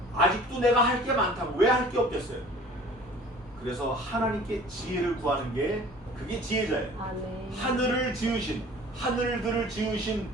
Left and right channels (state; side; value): normal; both; correlation 0.47